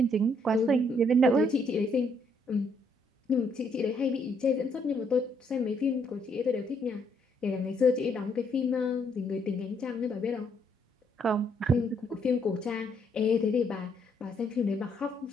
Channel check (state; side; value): normal; both; correlation 0.71